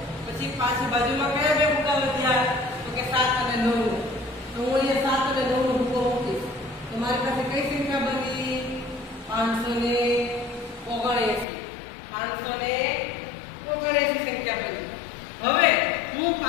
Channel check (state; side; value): drops out; right; at 11.5 s